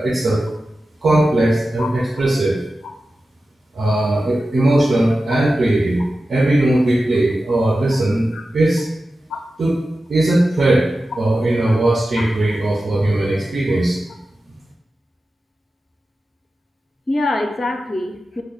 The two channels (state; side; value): normal; both; correlation 0.93